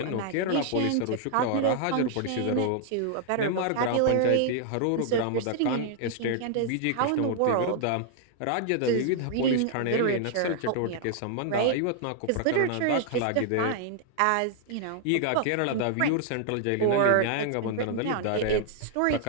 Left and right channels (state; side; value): different; both; correlation 0.00